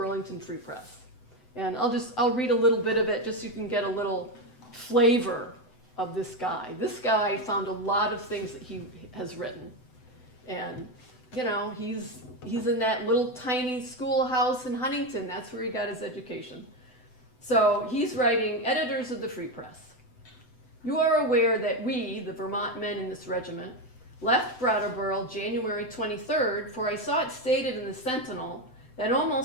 Free Press. And I'll read a little bit of it just so you can get a little flavor of this guy. This guy found a lot of things that he has written. And, he's in that little tiny schoolhouse in Huntington. That's where he got his education. So he's writing, editors of the Free Press. You are aware that we, the Vermont men in this regiment, left Brattleboro January 23rd, for I saw it stated in the Sentinel that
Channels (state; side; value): late; right; 7.9 ms